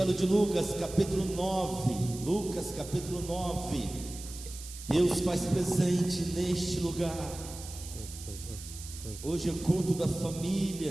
de Lucas, capítulo 9. Lucas, capítulo 9. Deus faz presente neste lugar. Hoje é culto da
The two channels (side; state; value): right; noise; hiss, 13 dB below the sound